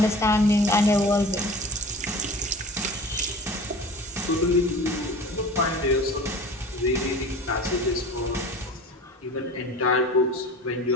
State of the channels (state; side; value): normal; both; correlation 0.39